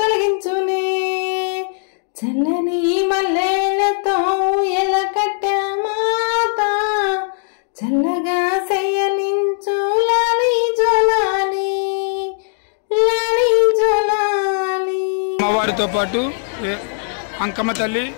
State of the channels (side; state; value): right; silent; digital silence